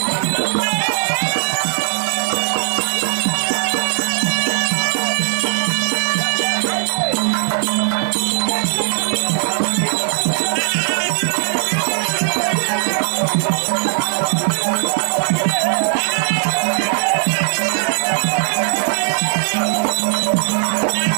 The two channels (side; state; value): left; silent; 58 dB below the other